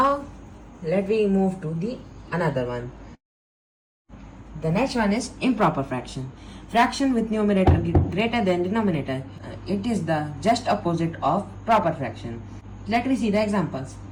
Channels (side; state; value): both; identical; correlation 1.00